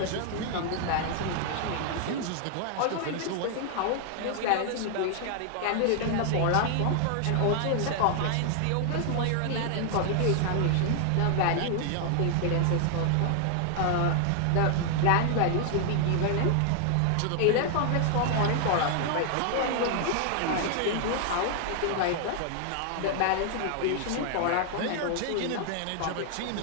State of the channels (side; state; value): both; different; correlation 0.00